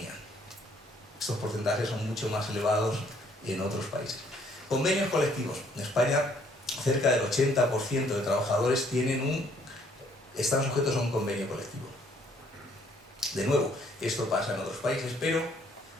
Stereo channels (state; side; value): normal; both; correlation 0.64